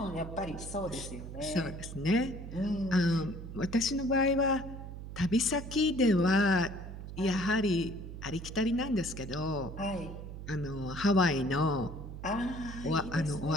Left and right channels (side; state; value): right; noise; hum, 10 dB below the sound